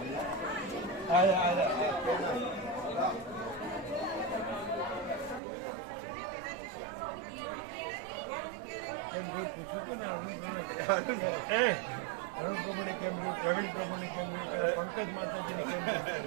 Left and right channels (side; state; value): left; drops out; at 5.4 s